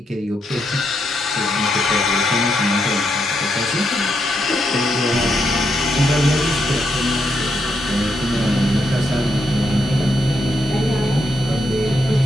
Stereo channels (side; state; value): both; normal; correlation 0.80